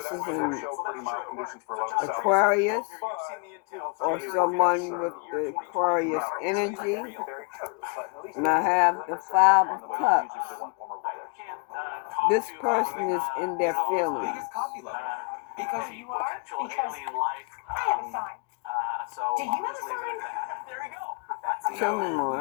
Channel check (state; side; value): quieter; right; 36.7 dB